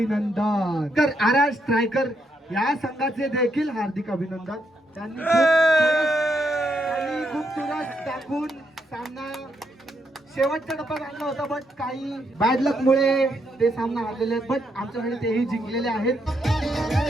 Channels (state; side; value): normal; both; correlation 0.78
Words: तर RR स्ट्रायकर या संघाचे देखील हार्दिक अभिनंदन. त्यांनी खूप चुरस टाकून सामना शेवटच्या टप्प्यात आणला होता, बट काही बॅड लक मुळे ते सामना हारलेले आहेत. बट आमच्याकडे तेही जिंकलेले आहेत.